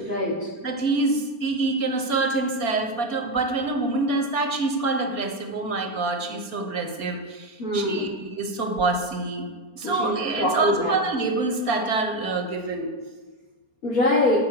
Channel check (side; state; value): right; late; 4.3 ms